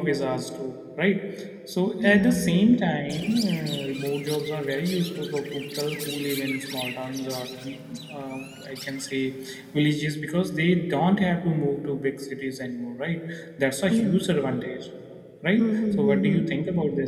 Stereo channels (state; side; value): identical; both; correlation 1.00